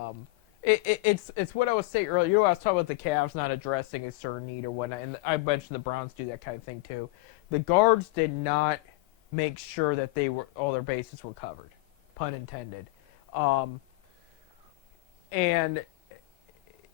It's what I was saying earlier. I was talking about the Cavs not addressing a certain need or whatnot, and I mentioned the Browns do that kind of thing too. The guards did not make sure that all their bases were covered, pun intended. And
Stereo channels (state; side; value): quieter; right; 22.5 dB